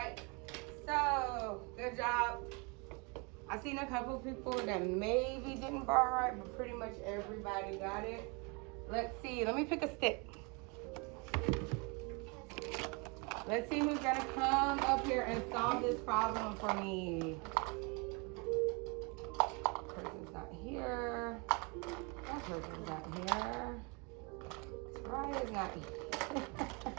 so good job. I've seen a couple people that maybe didn't bar right, but pretty much everybody got it. Let's see, let me pick a stick. Let's see who's gonna come up here and solve this problem for me. Person's not here. That person's not here. Soraya's not here.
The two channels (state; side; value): quieter; left; 31.3 dB